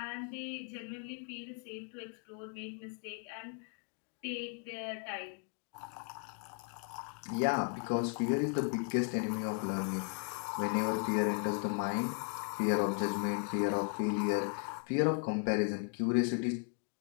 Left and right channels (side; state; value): right; quieter; 39.3 dB